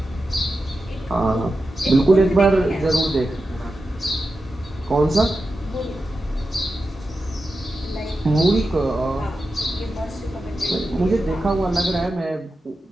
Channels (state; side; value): normal; both; correlation 0.91